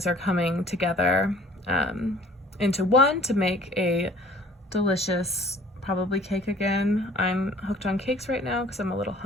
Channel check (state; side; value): normal; both; correlation 0.51